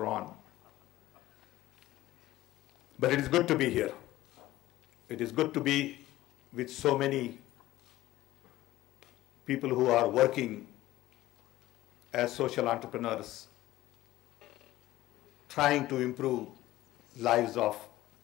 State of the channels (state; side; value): quieter; right; 16.1 dB